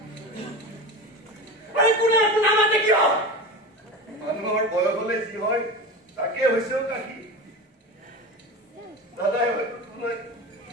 মানুহৰ বয়স হলে যি হয় তাকে হৈছেও কাকি দাদাই হয়তো তোমাক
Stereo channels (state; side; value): normal; both; correlation 0.28